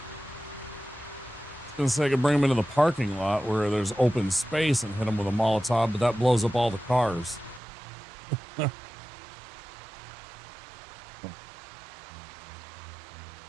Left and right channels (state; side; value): drops out; left; at 7.6 s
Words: I was gonna say I could bring them into the parking lot where there's open space and hit them with a Molotov, but that blows up all the cars.